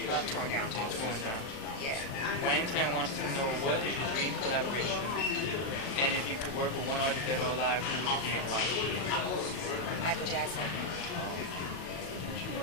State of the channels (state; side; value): late; right; 37 ms